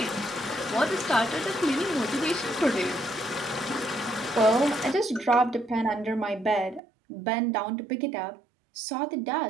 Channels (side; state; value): left; drops out; at 6.8 s